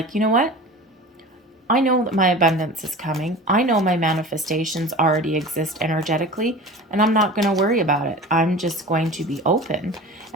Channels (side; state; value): both; normal; correlation 0.36